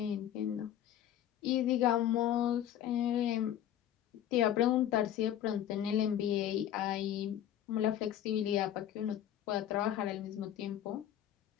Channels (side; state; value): right; quieter; 11.1 dB